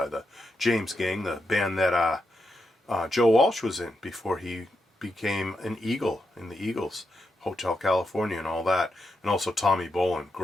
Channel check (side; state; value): both; normal; correlation 0.85